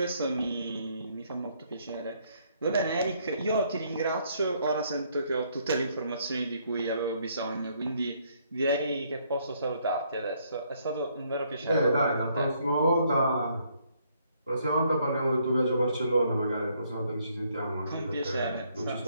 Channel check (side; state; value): both; inverted; correlation -0.69